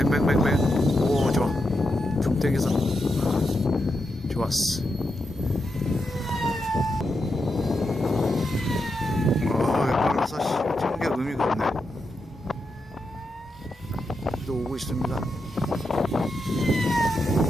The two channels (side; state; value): both; normal; correlation 0.85